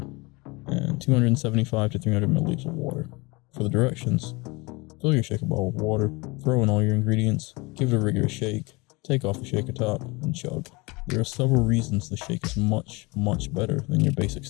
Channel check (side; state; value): right; quieter; 25.7 dB